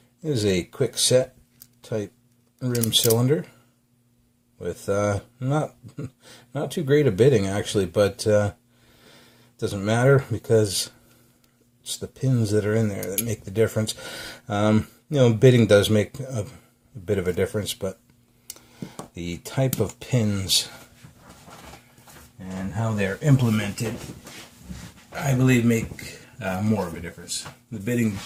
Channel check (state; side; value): identical; both; correlation 1.00